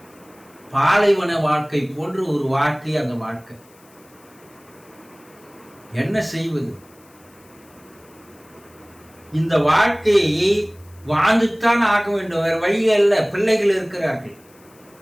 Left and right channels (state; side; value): noise; left; hiss, 29 dB below the sound